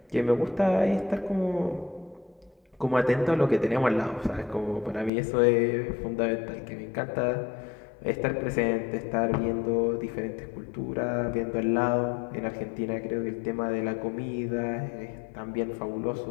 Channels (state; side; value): drops out; right; at 5.1 s